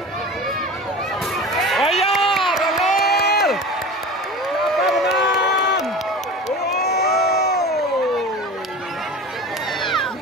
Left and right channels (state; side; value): normal; both; correlation 0.34